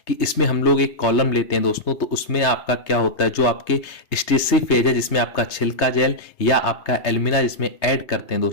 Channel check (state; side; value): late; right; 3.2 ms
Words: कि इसमें हम लोग एक कॉलम लेते हैं दोस्तों, तो उसमें आपका क्या होता है, जो आपके स्टेटरी फेज है जिसमें आपका छिलका जेल या आपका एल्यूमिना जिसमें ऐड करते हैं